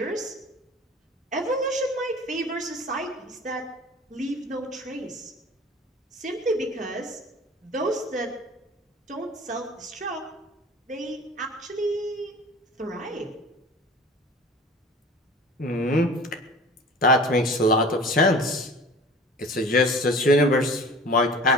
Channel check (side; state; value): both; normal; correlation 0.42